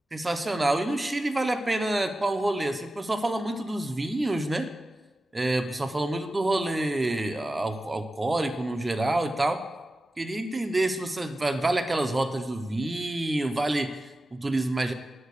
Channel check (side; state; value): both; normal; correlation 0.94